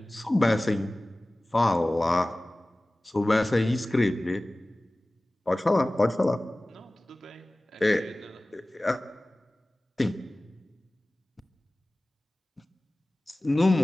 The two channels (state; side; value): normal; both; correlation 0.98